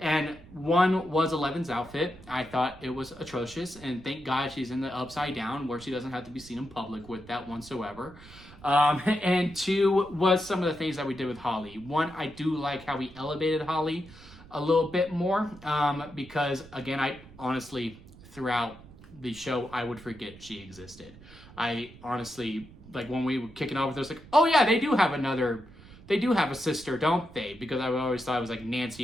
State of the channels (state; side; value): noise; right; rumble, 20 dB below the sound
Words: And one was Eleven's outfit. I thought it was atrocious, and thank God she's in the upside down where she doesn't have to be seen in public with that whatsoever. And 2 was some of the things that we did with Holly. 1, I do like how we elevated Holly a little bit more, because again, I honestly, throughout the show, I would forget she existed. I honestly, like, when we were kicking off with her, I was like, oh yeah, they do have a sister, don't they? Because I always thought it was like